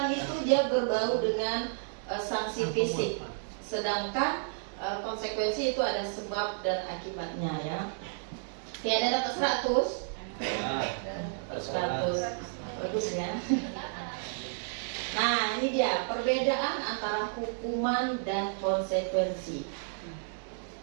itu dia berbau dengan sanksi fisik, sedangkan konsekuensi itu ada sebab dan akibatnya ya. Oke, ada dapat 100. 100. Bagus ya. Nah, ini dia perbedaan antara hukuman dan konsekuensi.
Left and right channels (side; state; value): left; silent; digital silence